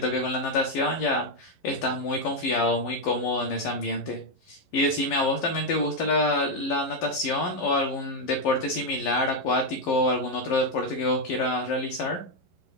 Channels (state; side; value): late; right; 11 ms